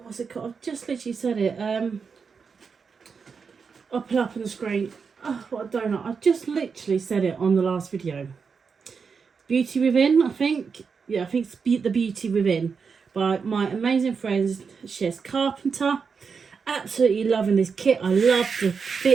what's it called? I've just literally said it. I'll put it up on the screen. Oh, what a donut. I just literally said it on the last video. Beauty Within, I think. Yeah, I think it's The Beauty Within by my amazing friend Cheryl Carpenter. Absolutely loving this kit. I love the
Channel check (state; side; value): quieter; left; 5.6 dB